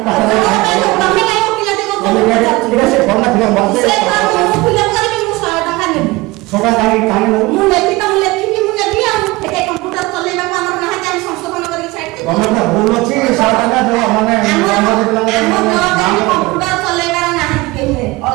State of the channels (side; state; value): left; quieter; 21.8 dB